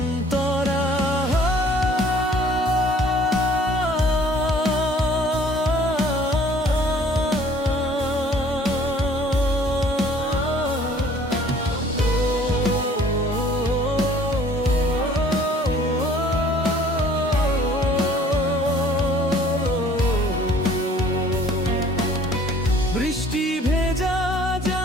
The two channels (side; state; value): both; normal; correlation 0.55